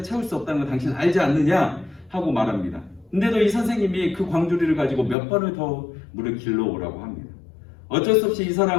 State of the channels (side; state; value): right; drops out; at 5.2 s